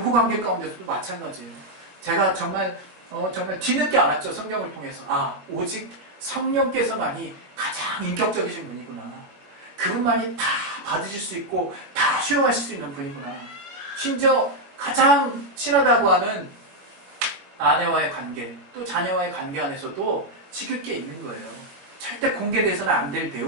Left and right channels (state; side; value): late; left; 21 ms